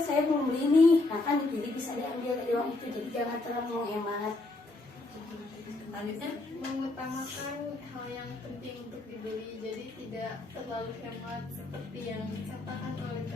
saya belum beli nih, nah kan jadi bisa diambil dari uang itu. Jadi jangan terlalu menghemat. Selanjutnya Mengutamakan hal yang penting untuk dibeli, jadi tidak terlalu hemat seperti yang dikatakan oleh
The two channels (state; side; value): quieter; right; 3.0 dB